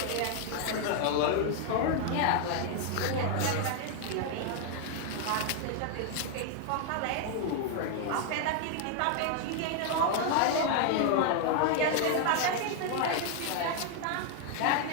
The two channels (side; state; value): both; different; correlation 0.00